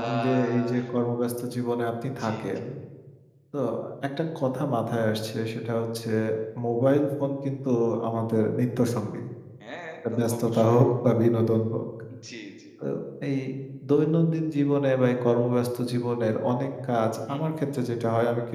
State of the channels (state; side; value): identical; both; correlation 1.00